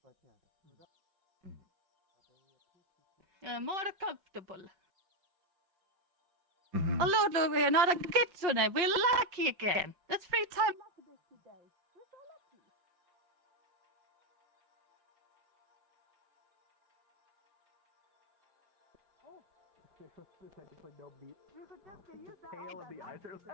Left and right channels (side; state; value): left; late; 5.7 ms